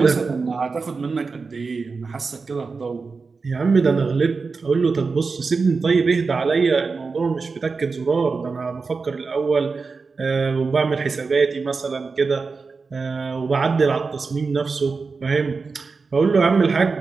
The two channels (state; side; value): quieter; left; 4.5 dB